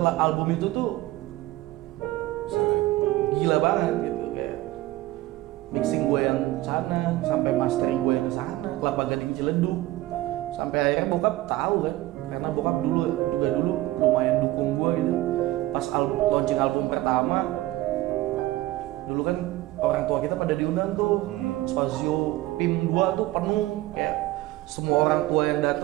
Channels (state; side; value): quieter; left; 17.1 dB